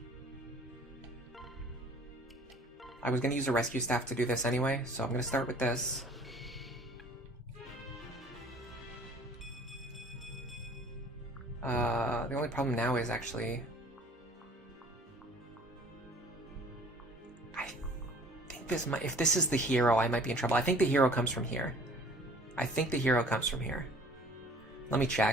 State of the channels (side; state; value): both; normal; correlation 0.51